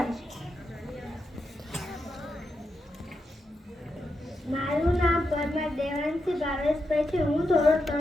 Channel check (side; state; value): both; normal; correlation 0.85